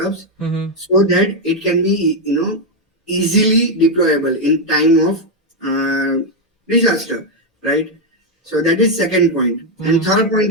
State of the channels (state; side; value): normal; both; correlation 0.03